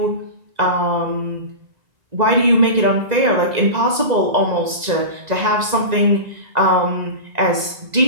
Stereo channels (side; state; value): left; late; 2.0 ms